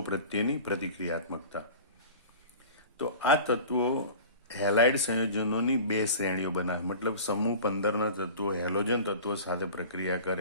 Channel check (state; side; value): inverted; both; correlation -0.39